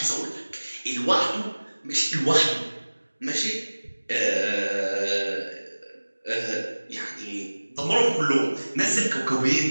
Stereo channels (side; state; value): both; inverted; correlation -1.00